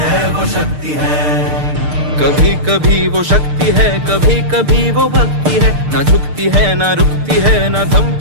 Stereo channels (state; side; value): late; left; 6.6 ms